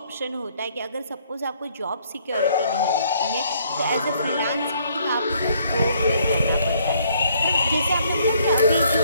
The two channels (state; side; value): inverted; both; correlation -0.65